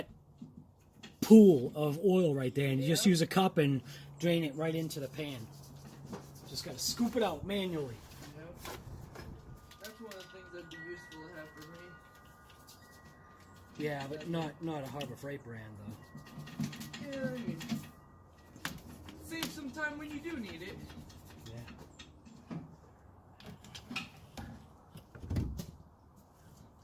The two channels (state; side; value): identical; both; correlation 1.00